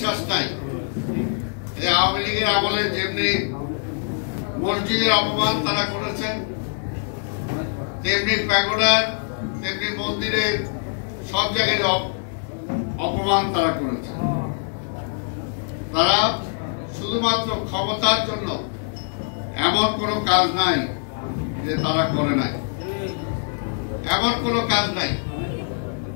নাই যে আওয়ামী লীগের আমলে যেমনি মসজিদের অপমান তারা করেছেন, তেমনি প্যাগোডার, তেমনি মন্দিরের সব জায়গায় অপমান তারা করেছে। তারা শুধুমাত্র ক্ষমতার জন্য এমন কোনো কাজ নাই যে তারা করে নাই, এমন কোনো কাজ নাই।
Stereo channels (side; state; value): right; silent; 63 dB below the other